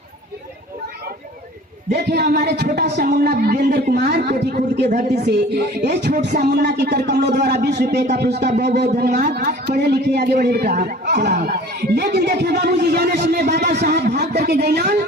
देखिए हमारे छोटा सा मुन्ना वीरेंद्र कुमार कोठी खुद के धरती से ये छोटा सा मुन्ना की कर कमलों द्वारा 20 रुपए का पुरस्कार, बहुत बहुत धन्यवाद। पढ़े लिखे आगे बढ़े बेटा चला। लेकिन देखिए बाबूजी जाने समय बाबा साहब भाग करके गए,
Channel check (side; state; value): both; normal; correlation 0.46